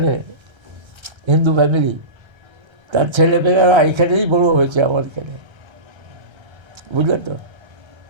হিন্দু ফ্যামিলি, তার ছেলেমেয়েরা এখানেই বড়ো হয়েছে আমার এখানে, বুঝলেন তো?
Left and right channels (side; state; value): left; late; 1.3 ms